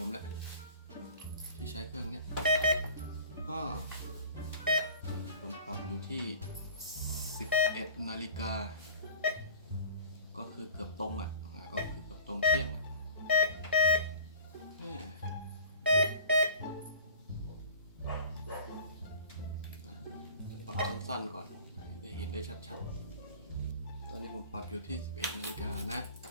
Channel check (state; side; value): inverted; both; correlation -0.43